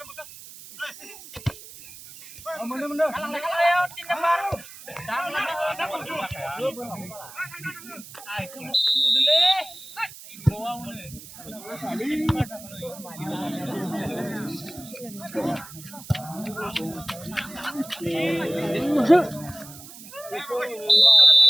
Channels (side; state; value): right; noise; hiss, 16 dB below the sound